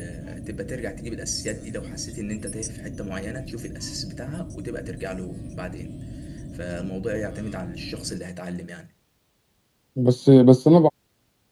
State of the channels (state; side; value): identical; both; correlation 1.00